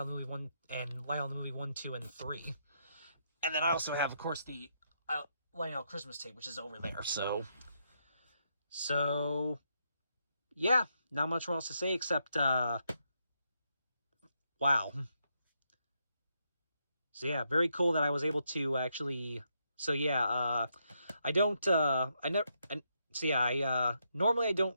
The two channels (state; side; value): inverted; both; correlation -0.79